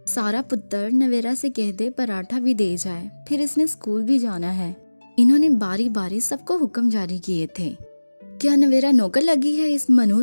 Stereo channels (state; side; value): inverted; both; correlation -1.00